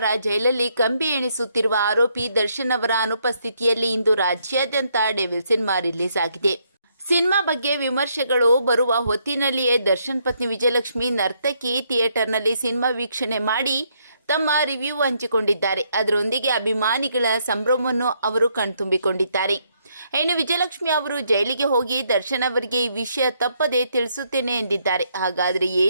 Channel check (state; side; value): inverted; both; correlation -0.73